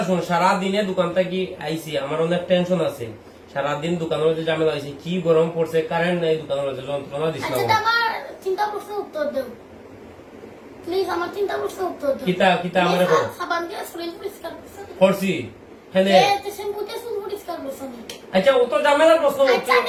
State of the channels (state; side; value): identical; both; correlation 1.00